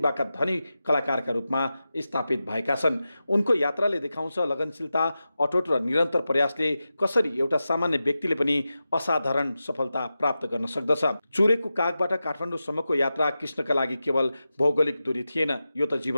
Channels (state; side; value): inverted; both; correlation -0.92